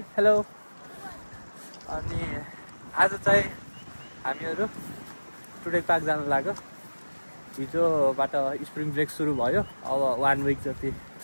Hello. आज चाहिँ हामीहरु today park जान लाग्यो। हिजोबाट spring brake सुरु भयो। अब 1 वीक जति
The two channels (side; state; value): both; inverted; correlation -1.00